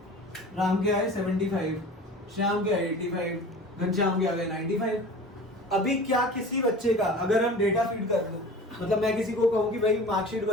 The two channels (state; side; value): normal; both; correlation 0.39